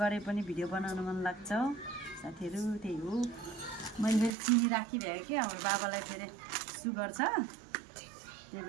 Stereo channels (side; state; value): left; drops out; at 4.3 s